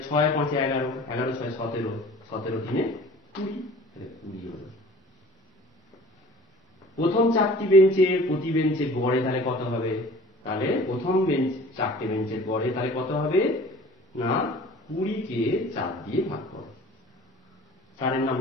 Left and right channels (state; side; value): normal; both; correlation 0.46